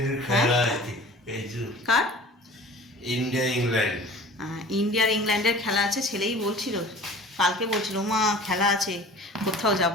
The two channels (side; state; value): both; normal; correlation 0.43